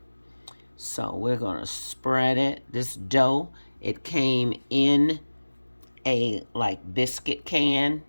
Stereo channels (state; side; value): inverted; both; correlation -1.00